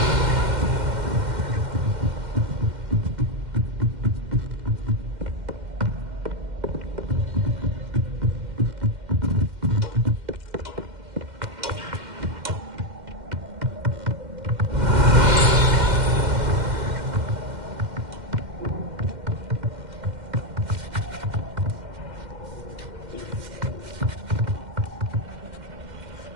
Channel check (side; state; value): left; late; 2.1 ms